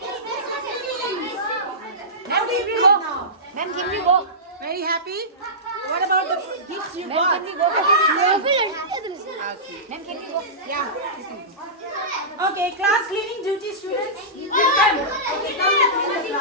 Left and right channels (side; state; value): both; normal; correlation -0.18